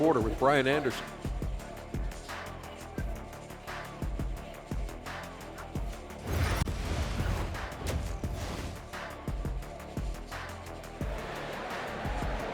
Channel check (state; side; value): identical; both; correlation 1.00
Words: with Brian Anderson.